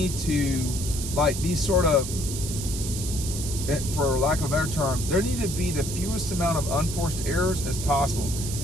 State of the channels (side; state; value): right; noise; hiss, 7 dB below the sound